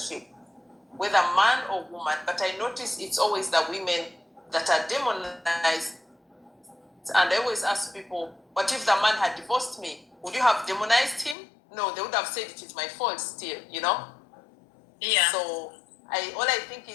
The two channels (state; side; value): drops out; right; at 11.4 s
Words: whether man or woman. But I notice it's always the women that are demonized. And I always ask people, what if the man had divorced me? Would you have demonized him? No, they would have said it is my fault still, Yeah. So all I think